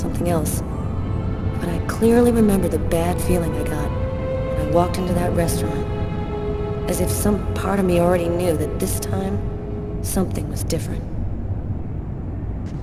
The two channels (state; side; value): identical; both; correlation 1.00